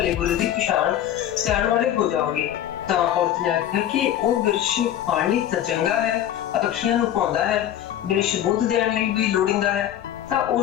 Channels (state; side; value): quieter; right; 11.4 dB